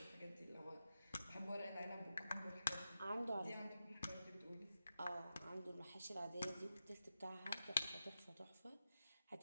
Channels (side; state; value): both; inverted; correlation -0.90